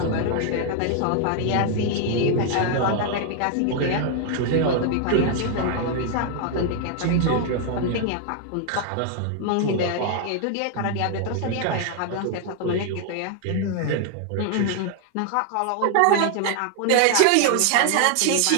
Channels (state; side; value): different; both; correlation 0.00